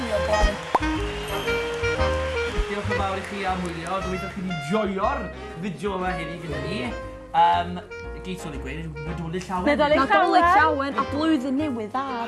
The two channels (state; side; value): identical; both; correlation 1.00